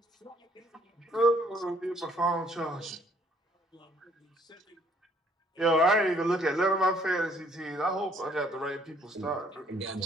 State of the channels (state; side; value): normal; both; correlation 0.63